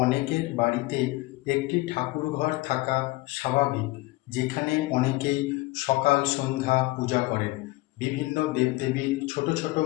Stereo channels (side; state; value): right; quieter; 20.4 dB